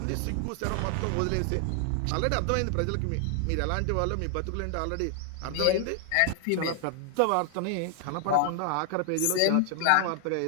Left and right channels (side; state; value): both; different; correlation 0.00